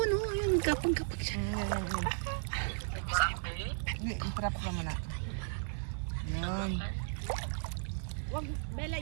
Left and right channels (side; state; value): left; silent; digital silence